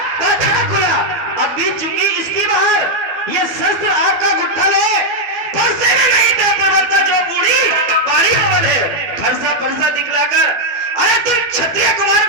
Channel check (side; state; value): left; late; 12 ms